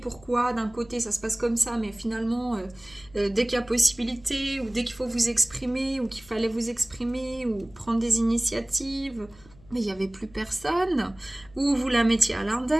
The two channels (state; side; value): noise; left; hum, 25 dB below the sound